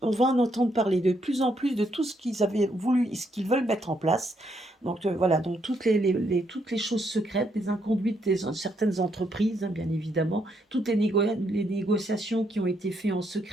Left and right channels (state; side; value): normal; both; correlation 0.75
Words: entendre parler de plus en plus de tout ce qu'ils avaient voulu, ce qu'ils veulent mettre en place. Donc voilà, donc toutes les choses secrètes, les inconduites des certaines entreprises, hein, bien évidemment, toutes les négociations qui ont été faites en